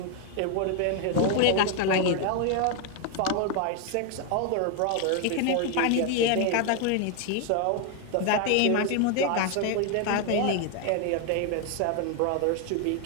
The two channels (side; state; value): both; different; correlation 0.01